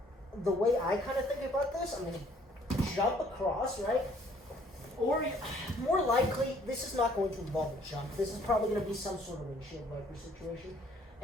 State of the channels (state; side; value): normal; both; correlation 0.60